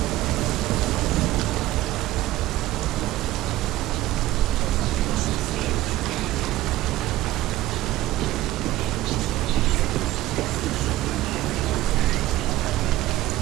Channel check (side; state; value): left; quieter; 15.9 dB